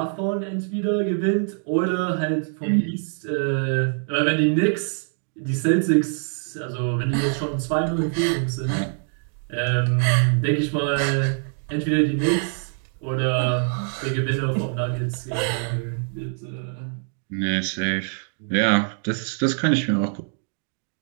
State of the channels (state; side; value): silent; left; 55 dB below the other